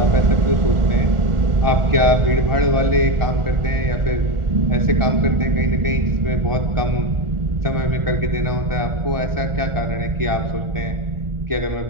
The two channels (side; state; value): left; late; 1.4 ms